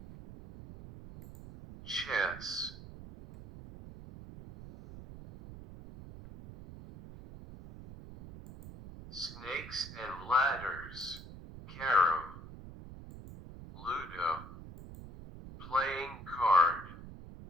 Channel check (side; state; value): right; noise; rumble, 14 dB below the sound